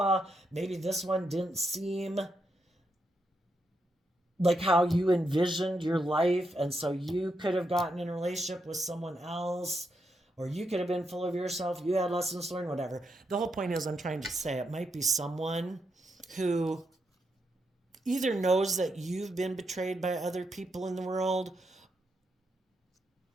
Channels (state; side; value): normal; both; correlation 0.82